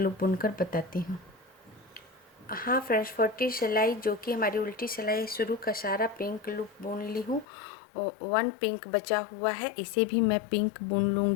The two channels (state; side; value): drops out; right; at 7.5 s